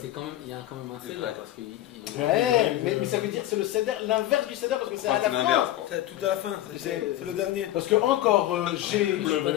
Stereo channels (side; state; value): right; quieter; 14.2 dB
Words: quand même, il y a quand même un céder parce qu'il. Ouais, mais ça veut dire c'est le céder, l'inverse du céder parce que c'est à la fin. C'est tout à la fin, c'est le dernier. Parce que encore j'ai. Je suis pas